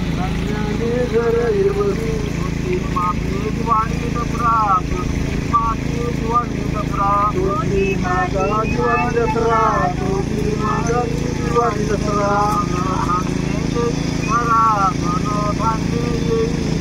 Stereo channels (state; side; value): identical; both; correlation 1.00